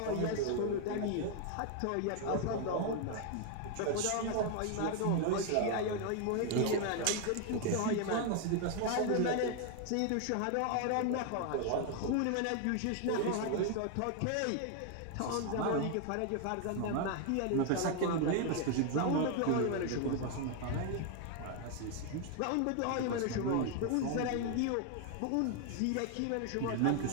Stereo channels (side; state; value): both; different; correlation 0.00